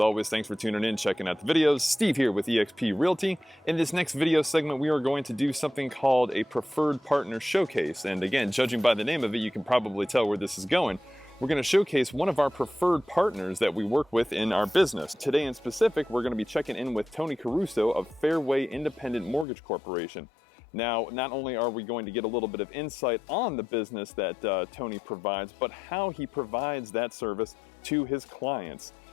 always, thanks for tuning in, checking out the videos. Steve here with eXp Realty. In this next video segment, we are going to do something called a preferred partner showcase. And again, judging by the name of it, you can probably tell where this is going. We're going to showcase one of our preferred partners that we work with in our business. Today in specific, we're going to be checking in with Tony Caruso of Fairway Independent Mortgage Corporation. Now, not only are we going to get a little bit of insight on the business that Tony provides, but how he provides that service to his clients.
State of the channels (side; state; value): right; drops out; at 19.5 s